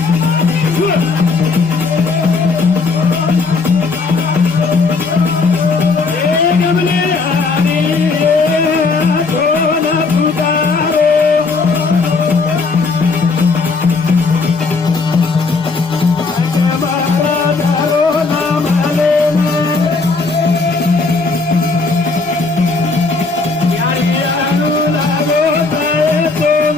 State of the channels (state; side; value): quieter; right; 4.1 dB